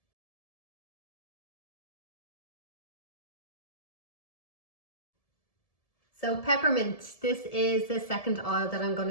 So peppermint, this is the second oil that I'm going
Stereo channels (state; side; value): late; right; 1.7 ms